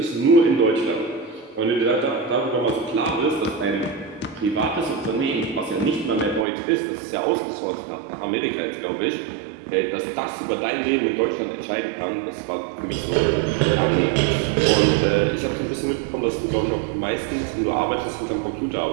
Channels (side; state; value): left; drops out; at 6.5 s